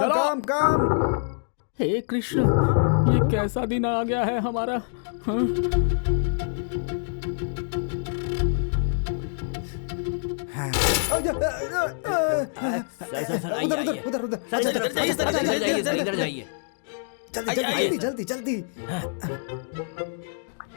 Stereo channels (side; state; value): right; silent; digital silence